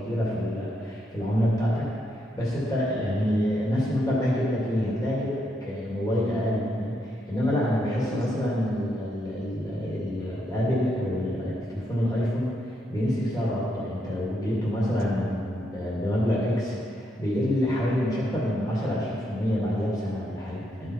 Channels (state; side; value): normal; both; correlation 0.79